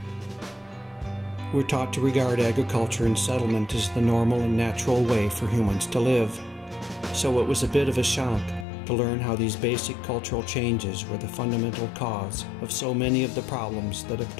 We're taught to regard agriculture and settlement as the normal and natural way for humans to live. So it was a bit of a shock to learn how these basic cultural changes were the fundamental cause of so many of the problems that have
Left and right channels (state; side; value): drops out; right; at 8.7 s